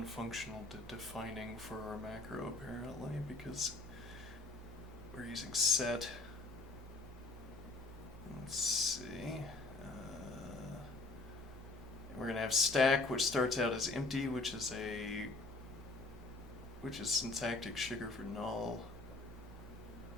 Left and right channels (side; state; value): right; quieter; 3.2 dB